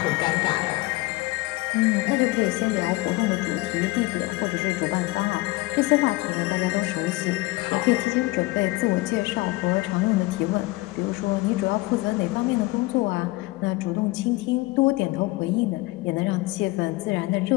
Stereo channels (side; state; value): right; quieter; 21.2 dB